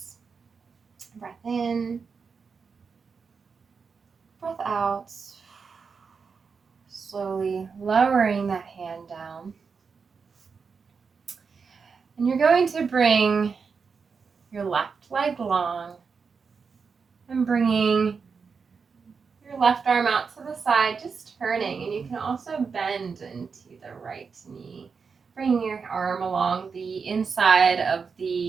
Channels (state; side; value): quieter; left; 5.4 dB